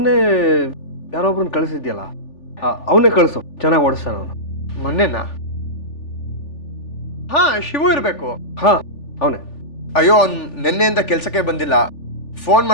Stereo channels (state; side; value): late; right; 3.4 ms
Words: ಯಾರೊಬ್ರನ್ನ ಕಳಿಸಿದ್ಯಲ್ಲ, ಅವನೇ ಕಳಿಸು, ಚೆನ್ನಾಗಿ ಓಡಿಸ್ತಾನ ಅವನು. ಮೊನ್ನೆನಾ? ಹಾ, ಶಿವು ಇರಬೇಕು. ಹಾಂ, ಅವನೇ. ಅಯ್ಯೋ, ಅವ್ನು ನಿನ್ನೆಯಿಂದ ಕೆಲಸಕ್ಕೆ ಬಂದಿಲ್ಲ. ಫೋನ್